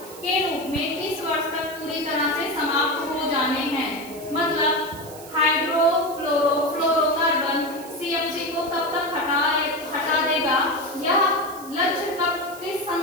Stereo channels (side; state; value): right; noise; hiss, 17 dB below the sound